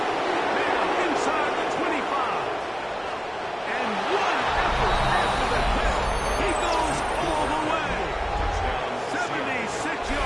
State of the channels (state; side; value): identical; both; correlation 1.00